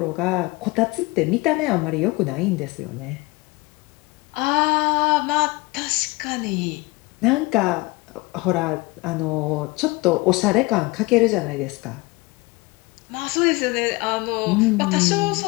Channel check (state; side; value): quieter; right; 23.2 dB